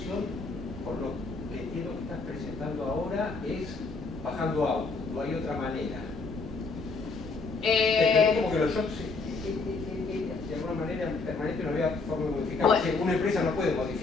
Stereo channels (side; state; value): right; quieter; 4.0 dB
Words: por lo que entiendo que estás presentando ahora, es bajando output, no hay otra manera. Como que los shocks de alguna manera permanente no había forma de modificar. Bueno. Una empresa no puede